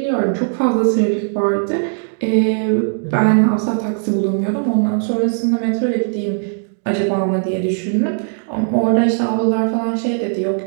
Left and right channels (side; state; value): left; silent; digital silence